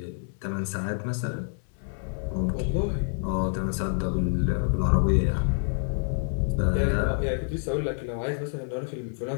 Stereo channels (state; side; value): silent; right; 60 dB below the other